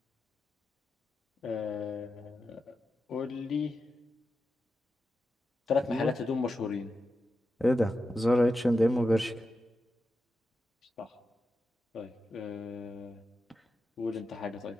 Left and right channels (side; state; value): both; normal; correlation 0.90